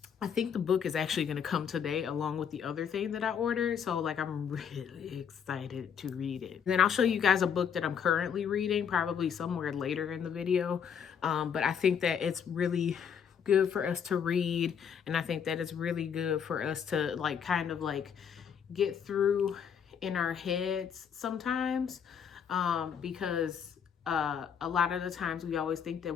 I think the book is actually going to come today along with the other thing that I ordered. So like I'm really excited to read it. Then I'll show you guys a book that I'm currently reading, probably somewhere later in the video. But I think that it's really good for us to read. And I think that it's really good for us to like kind of like get through in our heads sometimes, because a lot of the times we always think that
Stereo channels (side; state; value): right; quieter; 7.6 dB